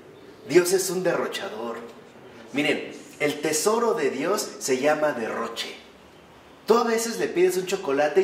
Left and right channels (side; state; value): both; identical; correlation 1.00